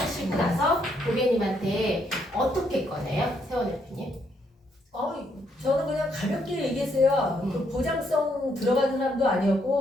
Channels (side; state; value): both; normal; correlation 0.73